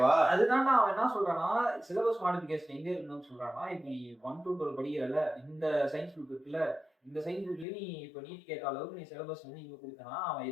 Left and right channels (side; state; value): right; drops out; at 7.7 s